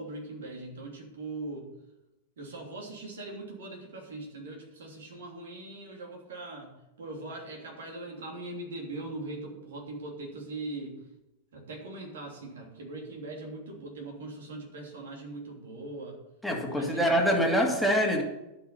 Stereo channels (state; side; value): normal; both; correlation 0.29